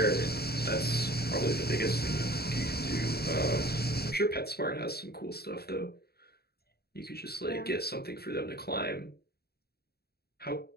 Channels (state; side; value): late; right; 0.46 ms